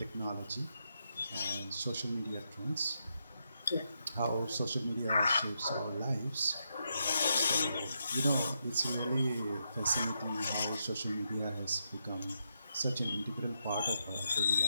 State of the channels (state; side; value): inverted; both; correlation -0.82